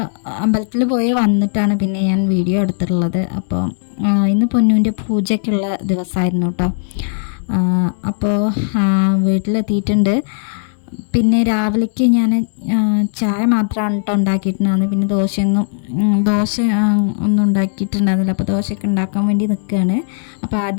അമ്പലത്തിൽ പോയി വന്നിട്ടാണ് പിന്നെ ഞാൻ വീഡിയോ എടുത്തിട്ടുള്ളത്. അപ്പോൾ ഇന്ന് പൊന്നുവിൻ്റെ പൂജയ്ക്കുള്ള ദിവസമായിരുന്നു കേട്ടോ. അപ്പോൾ വീട്ടിലെത്തിയിട്ടുണ്ട്. പിന്നെ രാവിലേക്ക് ഞാൻ ചായ മാത്രമാണ് കേട്ടോ ഉണ്ടാക്കിയിട്ടുണ്ടായിരുന്നത്. പിന്നെ ദോശ ഒന്നും ഉണ്ടാക്കിയിട്ടുണ്ടായിരുന്നില്ല. അപ്പോൾ ദോശയൊക്കെ ഉണ്ടാക്കാൻ വേണ്ടി നിൽക്കുകയാണ്. അപ്പോൾ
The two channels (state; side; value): silent; right; 64 dB below the other